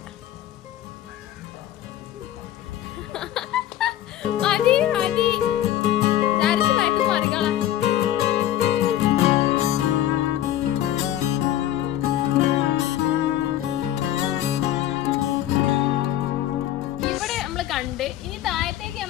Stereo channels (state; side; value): quieter; right; 12.6 dB